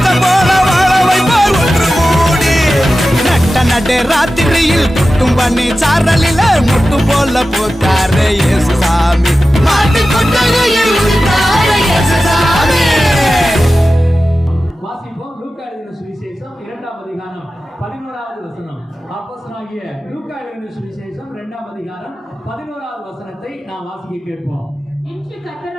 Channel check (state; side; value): normal; both; correlation 0.94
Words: போல வாழ வைப்பார் ஒன்று கூடி. நட்ட நடு ராத்திரியில் குட்டும் பண்ணி சாரலில முட்டு போல பூத்தாரே இயேசுசாமி, மாட்டு கொட்டகையில் உதித்தாரே இயேசுசாமி. வாசிப்போம். லூக்கா எழுதின சுவிசேஷம் 2ஆம் அதிகாரம் 11வது வசனம். அப்போஸ்தலனாகிய லூக்கா எழுதின சுவிசேஷம் 2ஆம் அதிகாரம் 11வது வசனத்தை நாம் வாசிக்க கேட்போம். இன்று